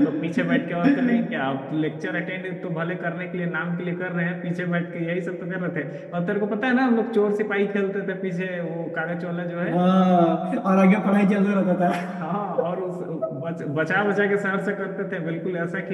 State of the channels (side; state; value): both; identical; correlation 1.00